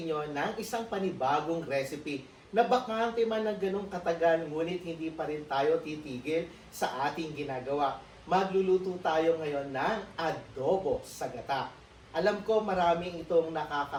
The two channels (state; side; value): identical; both; correlation 1.00